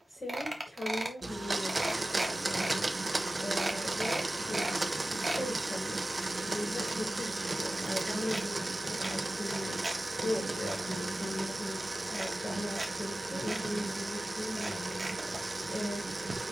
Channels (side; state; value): both; normal; correlation 0.96